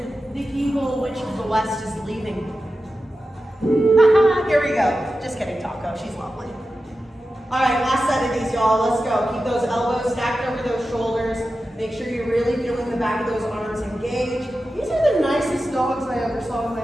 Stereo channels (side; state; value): both; normal; correlation 0.92